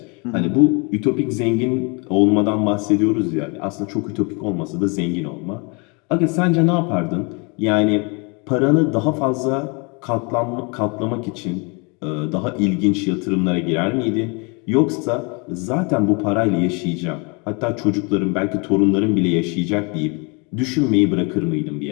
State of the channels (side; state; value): right; quieter; 31.9 dB